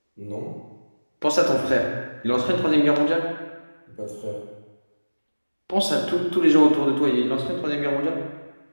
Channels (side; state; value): both; inverted; correlation -1.00